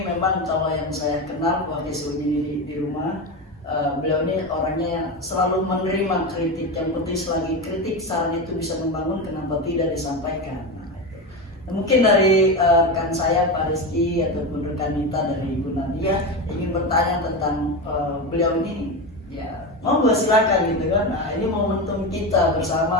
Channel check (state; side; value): normal; both; correlation 0.18